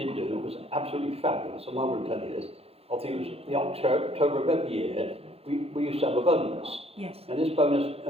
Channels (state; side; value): late; left; 0.29 ms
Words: do was absolutely fabulous. I'm not going to tell you this. I think it was the October of every year, we used to have a bonus. Yes. And this bonus